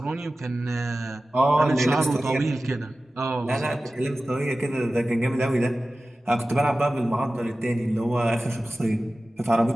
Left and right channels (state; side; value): normal; both; correlation 0.95